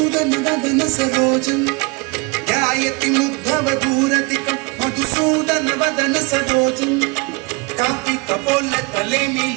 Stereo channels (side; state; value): left; quieter; 27.1 dB